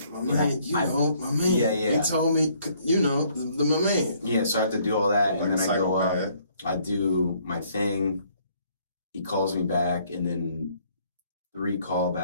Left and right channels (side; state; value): both; inverted; correlation -0.64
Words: my man. Yeah. He told me, my man. Yeah, so I have to do all that. And then I go up. I do my thing. He calls me back, and then 3